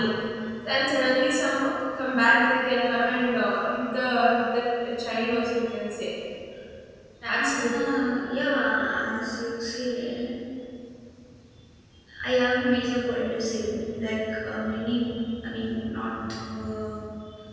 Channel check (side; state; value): both; identical; correlation 1.00